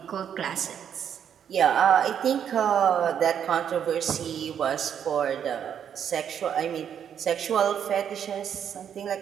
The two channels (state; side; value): quieter; left; 8.6 dB